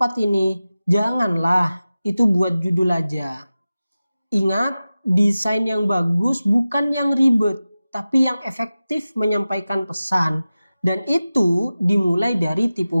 ini. Janganlah, itu buat judul aja. Ingat, desain yang bagus bukan yang ribet, tapi yang efektif menyampaikan pesan. Dan itu dimulai dari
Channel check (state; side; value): inverted; both; correlation -0.95